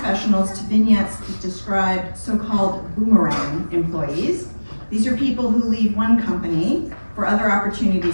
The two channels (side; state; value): both; inverted; correlation -1.00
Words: to vignettes that describe so-called boomerang employees. These are people who leave one company for other